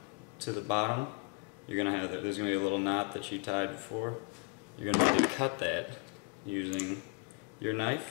to the bottom, you're going to have there's going to be a little knot that you tied before. You're going to need to cut that using your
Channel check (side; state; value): right; quieter; 32.0 dB